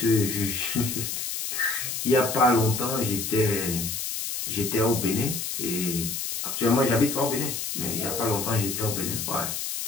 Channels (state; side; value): noise; left; hiss, 4 dB below the sound